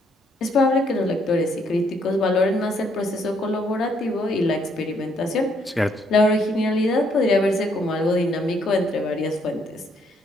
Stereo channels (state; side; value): normal; both; correlation 0.70